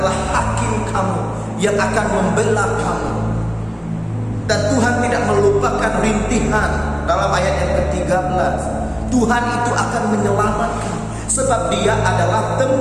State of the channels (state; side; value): identical; both; correlation 1.00